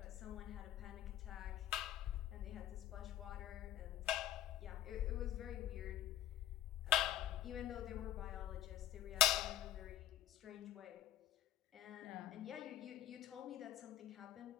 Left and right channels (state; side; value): quieter; right; 11.8 dB